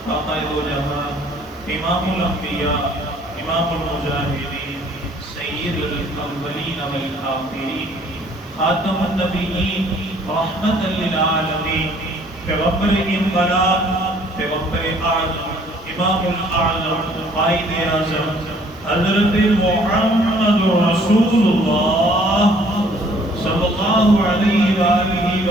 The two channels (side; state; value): both; normal; correlation 0.59